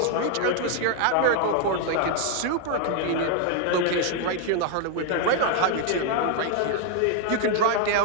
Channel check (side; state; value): both; different; correlation 0.01